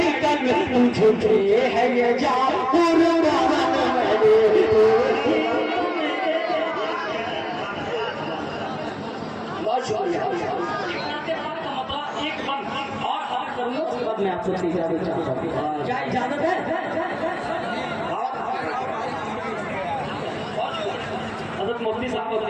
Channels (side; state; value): both; identical; correlation 1.00